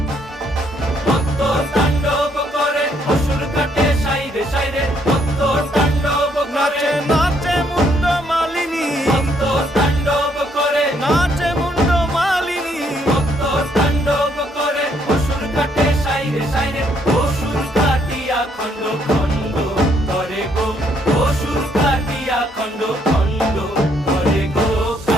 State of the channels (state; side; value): normal; both; correlation 0.70